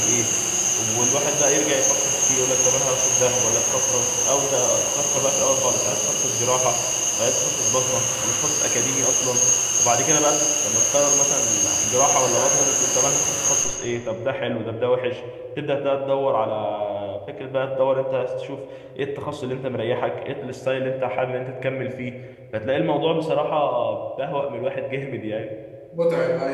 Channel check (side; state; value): both; identical; correlation 1.00